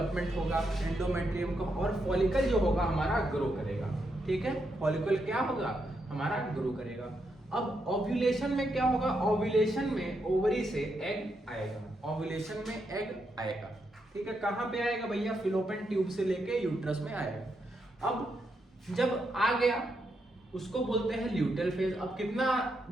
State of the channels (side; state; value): both; normal; correlation 0.81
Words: होगा एंडोमेट्रियम का, और फॉलिकल जो होगा हमारा ग्रो करेगा, ठीक है। फॉलिकल क्या होगा, हमारा ग्रो करेगा। अब ओव्यूलेशन में क्या होगा, ओव्यूलेशन में ओवरी से एग आएगा, ओव्यूलेशन में एग आएगा, ठीक है। कहाँ पे आएगा भैया, फिलोपियन ट्यूब से लेके यूट्रस में आएगा। अब जब आ गया उसको बोलते हैं ल्यूटेल फेज। अब कितना